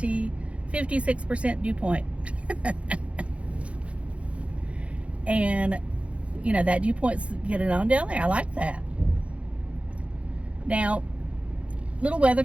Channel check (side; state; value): left; late; 0.062 ms